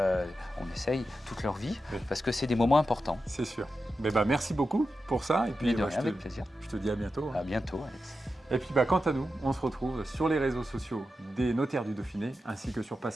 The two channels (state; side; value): normal; both; correlation 0.90